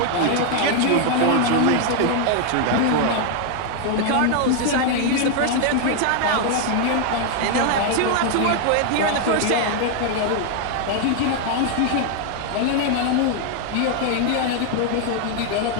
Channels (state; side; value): different; both; correlation 0.00